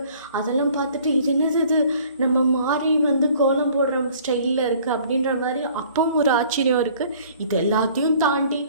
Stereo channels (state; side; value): inverted; both; correlation -0.54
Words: அதெல்லாம் பார்த்துட்டு இது என்னது இது நம்ம மாறி வந்து கோலம் போடுற ஸ்டைலில் இருக்குது அப்படின்ற மாதிரி அப்பவும் ஒரு ஆச்சரியம் இருக்குது. இது எல்லாத்தையும் தாண்டி